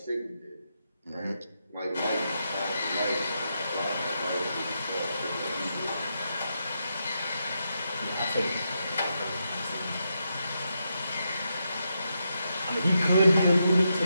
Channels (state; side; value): inverted; both; correlation -0.84